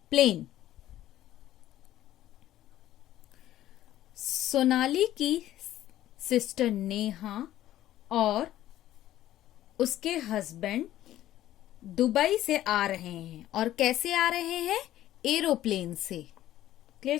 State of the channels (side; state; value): right; quieter; 13.5 dB